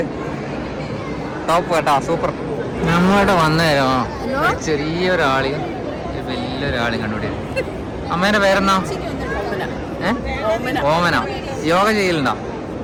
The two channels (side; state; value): both; identical; correlation 1.00